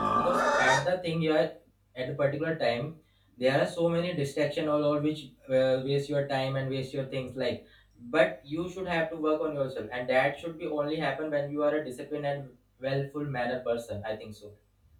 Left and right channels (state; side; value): identical; both; correlation 1.00